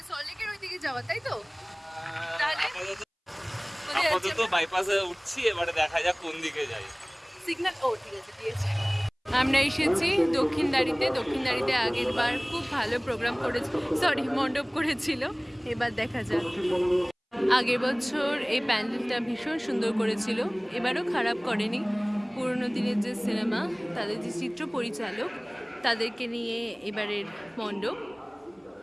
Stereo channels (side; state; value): both; identical; correlation 1.00